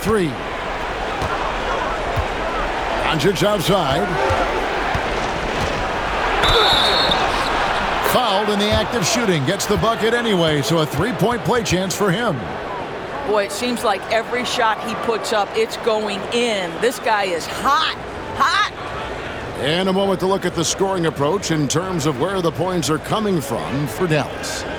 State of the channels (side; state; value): both; identical; correlation 1.00